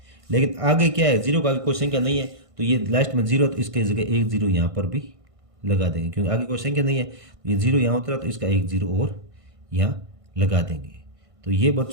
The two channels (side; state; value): left; late; 1.5 ms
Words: लेकिन आगे क्या है? 0 का आगे कोई संख्या नहीं है तो ये लास्ट में 0, तो इसके जगह 1 0 यहाँ पर भी लगा देंगे, क्योंकि आगे कोई संख्या नहीं है। तो ये 0 यहाँ उतरा तो इसका 1 0 और यहाँ लगा देंगे। तो ये